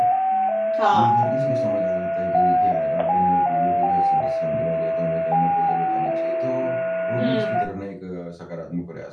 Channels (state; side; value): identical; both; correlation 1.00